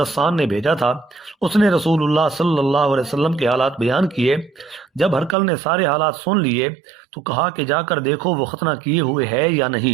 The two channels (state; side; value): drops out; left; at 5.4 s